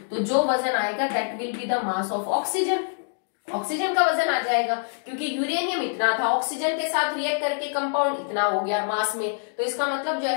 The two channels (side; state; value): right; silent; digital silence